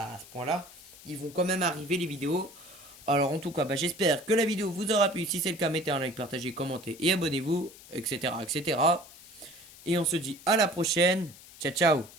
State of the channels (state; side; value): noise; left; hiss, 20 dB below the sound